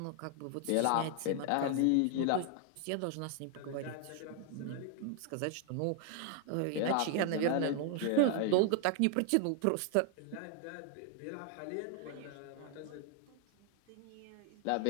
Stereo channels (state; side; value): different; both; correlation 0.00